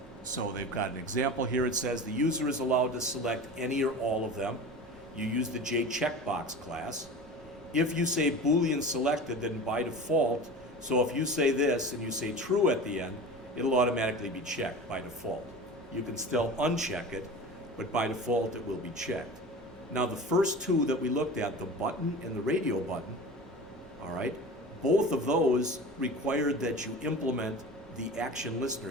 So they've got an example here. It says the user is allowed to select any or all of them. You use the JCheckbox class. If you say Boolean selected, then by default, so if you say this and you say true at the end, it'll automatically be checked by default. You can still uncheck it, but by default it will be checked. Now the first 2 that we looked at, the button and the radio button, all right? Both of those required that you implement the action listener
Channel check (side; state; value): both; normal; correlation 0.34